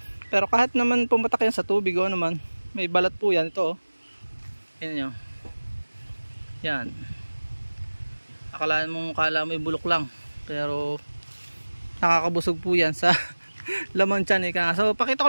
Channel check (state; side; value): inverted; both; correlation -1.00